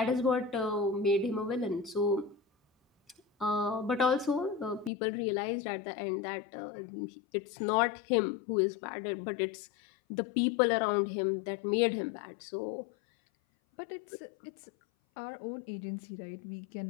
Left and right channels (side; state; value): right; drops out; at 4.9 s